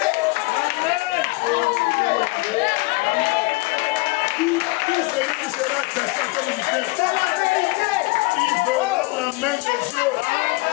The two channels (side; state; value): right; quieter; 24.3 dB